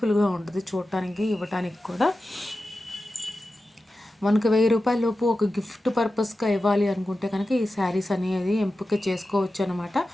ఉంటుంది చూడటానికి, ఇవ్వటానికి కూడా. మనకు రూ. 1000 లోపు ఒక గిఫ్ట్ పర్పస్గా ఇవ్వాలి అనుకుంటే కనుక ఈ శారీస్ అనేది ఎంపిక చేసుకోవచ్చు అనమాట.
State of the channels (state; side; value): normal; both; correlation 0.93